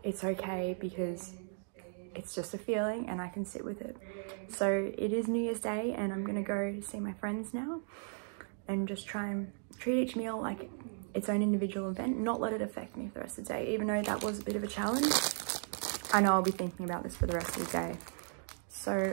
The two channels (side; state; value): left; silent; 54 dB below the other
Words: it's okay because it's just a feeling and I can sit with it. So it is New Year's Day, and I'm gonna go see my friends now and just try and treat each meal like its own individual event, not let it affect me for the rest of the day. Even though that was a bit of a challenge, I know I'll be thinking about this for the rest of the day.